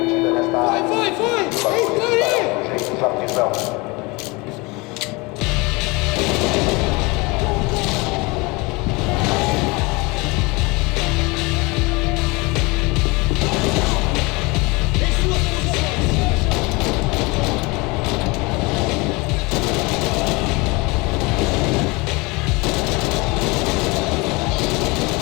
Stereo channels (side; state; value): right; quieter; 25.7 dB